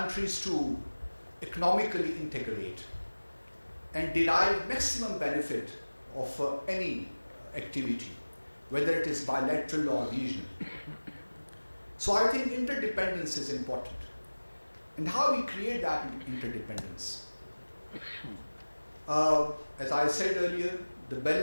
to economically integrate and derive maximum benefit of any activity, whether it is bilateral or regional. So I think interdependence is important. And how we create that interdependence? As I said earlier, the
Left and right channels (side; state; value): both; inverted; correlation -1.00